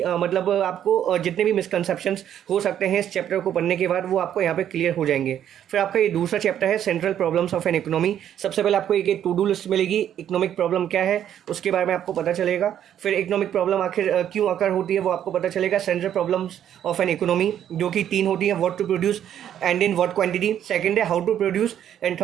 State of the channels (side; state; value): left; quieter; 10.2 dB